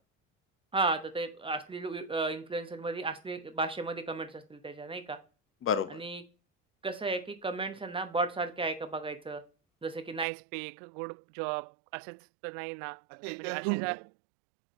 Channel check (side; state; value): left; drops out; at 10.2 s